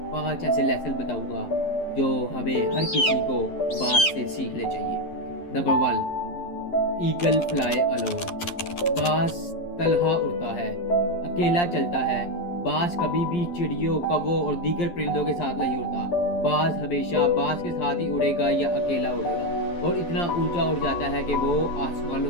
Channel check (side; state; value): right; late; 11 ms